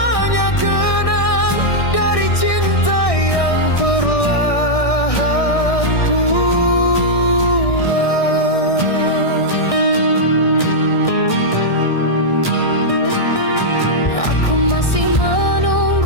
kenang dari cinta yang perlahan pulang. Aku masih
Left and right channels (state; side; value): late; right; 1.6 ms